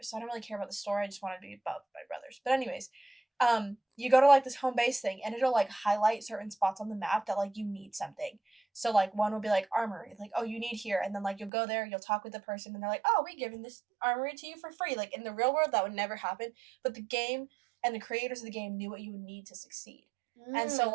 So I don't really care about the story. I just wanted to be above my brothers. But anyways, you go to, like, this home base thing, and it'll, like, highlight certain spots on the map that, like, you need something. So, like, one will be, like, armory. Like, oh, you need here. And then, like, you'll go there, you'll talk with the person, and they're like, oh, we're giving this armory to you for free. Like, in the real world, that would never happen. But the game and the creators of the game knew what you would need to succeed. And so,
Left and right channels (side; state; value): left; drops out; at 11.5 s